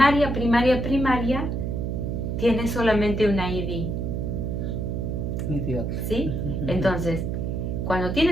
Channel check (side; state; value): right; noise; hum, 2 dB below the sound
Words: tiene solamente una ID. Idiota. ¿Sí? Entonces, cuando